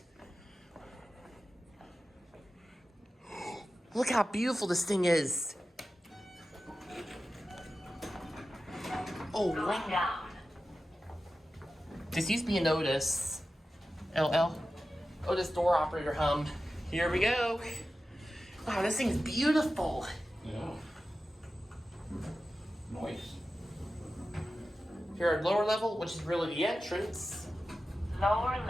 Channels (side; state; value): both; normal; correlation 0.93